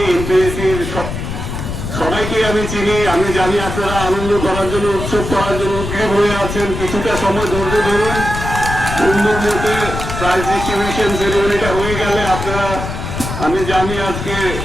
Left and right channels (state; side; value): noise; left; rumble, 6 dB below the sound